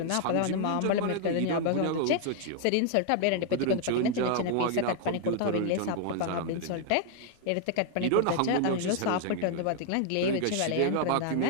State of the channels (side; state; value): both; different; correlation 0.00